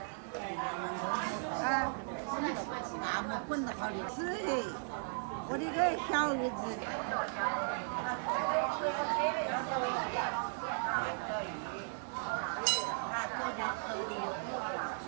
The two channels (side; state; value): left; silent; digital silence